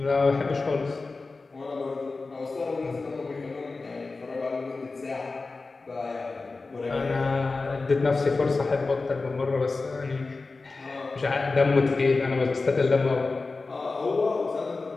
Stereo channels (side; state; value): right; quieter; 3.8 dB